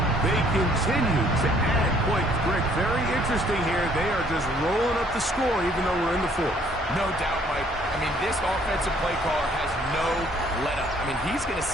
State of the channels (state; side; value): normal; both; correlation 0.62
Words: They continue to add points. Greg, very interesting here. They are just rolling up the score even though we're in the 4th. No doubt, Mike. I mean, this offensive play caller has no let-up. I mean, he's going to